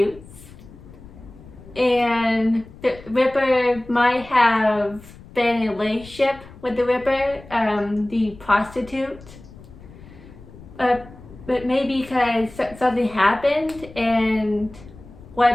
and the Ripper might have been in a relationship with the Ripper, the prostitute, but maybe because something happened, and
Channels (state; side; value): noise; left; rumble, 19 dB below the sound